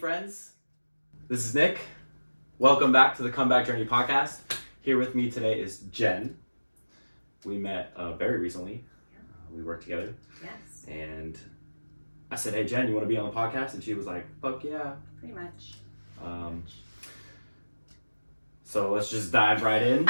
this is Nick. Welcome back to the Comeback Journey podcast. Here with me today is Jen. We met very recently. We worked together. Yes. And I said, hey Jen, you want to be on the podcast? And she was like, fuck yeah. Pretty much. So let's just dive right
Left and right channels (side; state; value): both; inverted; correlation -1.00